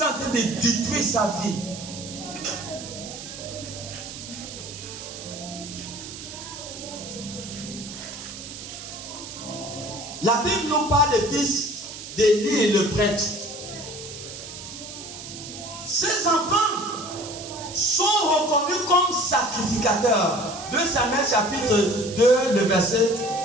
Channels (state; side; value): noise; right; hiss, 11 dB below the sound